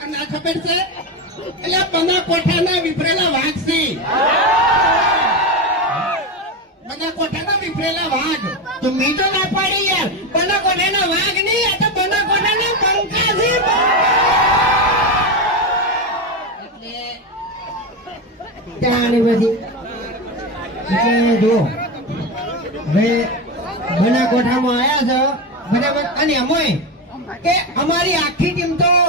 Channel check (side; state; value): both; normal; correlation 0.16